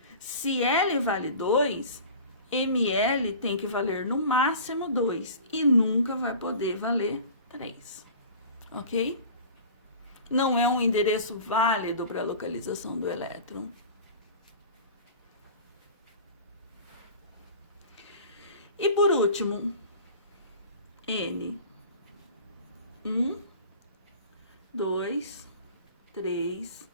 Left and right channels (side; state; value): both; inverted; correlation -0.40